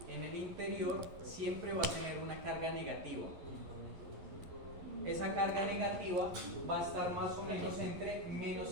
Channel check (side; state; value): left; late; 11 ms